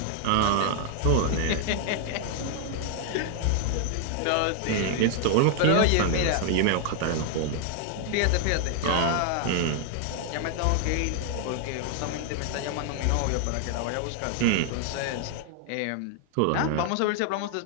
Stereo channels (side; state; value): both; different; correlation 0.00